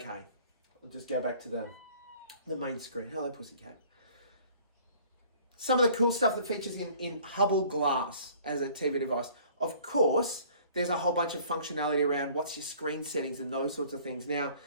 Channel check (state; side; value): inverted; both; correlation -0.53